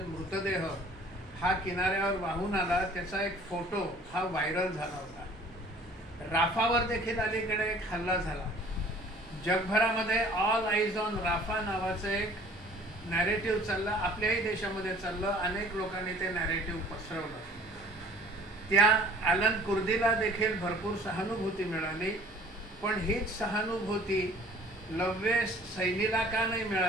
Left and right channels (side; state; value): both; normal; correlation 0.52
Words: मृतदेह हा किनाऱ्यावर वाहून आला, त्याचा एक फोटो हा व्हायरल झाला होता। राफावर देखील अलीकडे एक हल्ला झाला। जगभरामध्ये ऑल आईज ऑन राफा नावाचं एक नॅरेटिव्ह चाललं, आपल्याही देशामध्ये चाललं। अनेक लोकांनी ते नॅरेटिव्ह पसरवलं। त्या ॲलन कुर्दीला देखील भरपूर सहानुभूती मिळाली, पण हीच सहानुभूती लव्य सैनीला का नाही